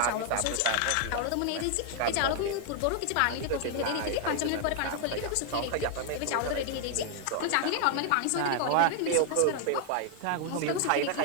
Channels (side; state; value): both; different; correlation 0.00